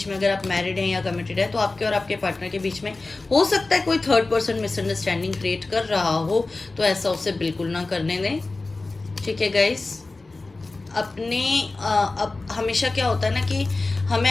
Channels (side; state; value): right; quieter; 3.4 dB